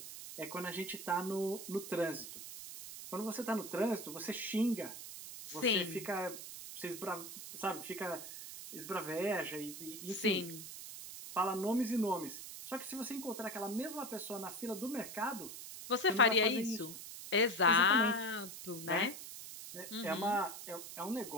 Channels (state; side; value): noise; right; hiss, 10 dB below the sound